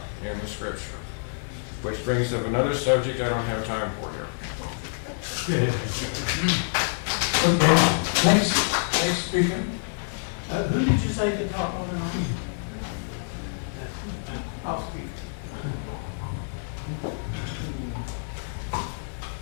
in the scripture. Which brings up another subject I don't have time for here. Okay, next speaker. Who did you say could talk on and on? I'll speak.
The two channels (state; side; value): silent; right; 60 dB below the other